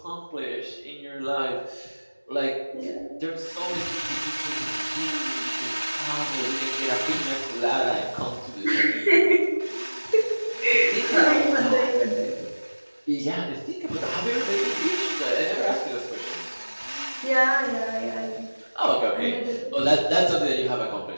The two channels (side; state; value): both; inverted; correlation -1.00